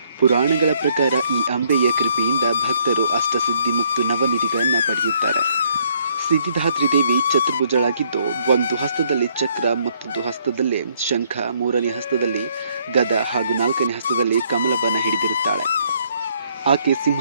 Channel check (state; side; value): inverted; both; correlation -0.67